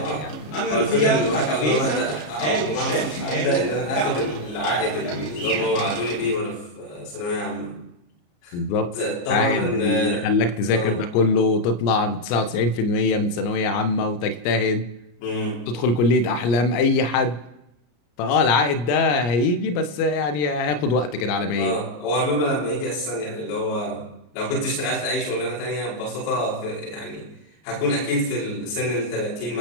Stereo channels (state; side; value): late; right; 33 ms